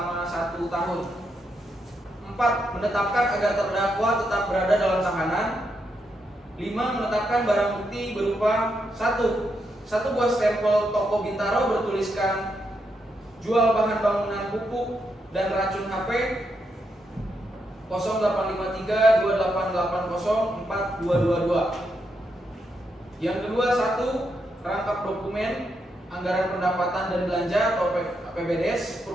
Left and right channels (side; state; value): both; normal; correlation 0.81